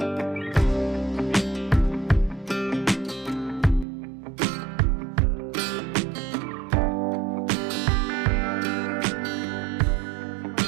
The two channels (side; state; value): left; drops out; at 3.9 s